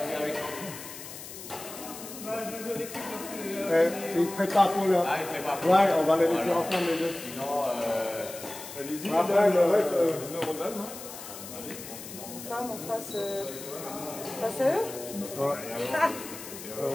avec Ils se préparent pour leur. Ah, il prépare. Ouais, on va les laisser ensemble les deux. Sinon, Après, le reste. femme en face, face à eux. Ouais. On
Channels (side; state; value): left; noise; hiss, 12 dB below the sound